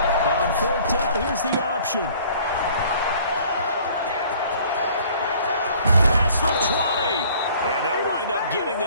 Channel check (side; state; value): both; inverted; correlation -0.54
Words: On 4th down, here's the option. Pass for 20. And they'll wind up getting